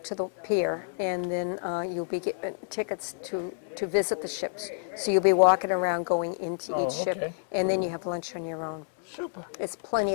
pier, and then you'll be getting tickets to visit the ships. So you'll be walking around going into each okay. ship, and then you have lunch on your own. Super. There's plenty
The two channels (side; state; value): right; silent; digital silence